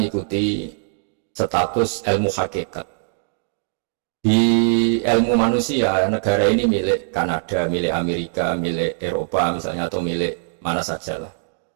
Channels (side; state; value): left; silent; digital silence